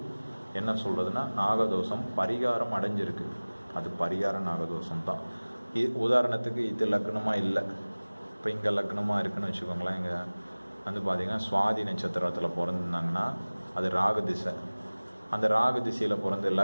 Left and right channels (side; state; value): both; inverted; correlation -1.00